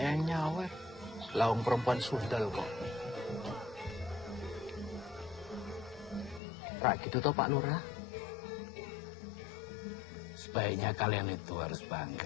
yang nyawer. Lawang perempuan sundal kok. Rak gitu toh Pak Lurah? Sebaiknya kalian itu harus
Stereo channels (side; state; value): right; drops out; at 6.4 s